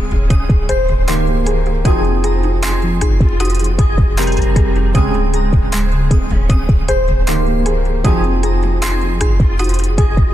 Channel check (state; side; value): normal; both; correlation 0.89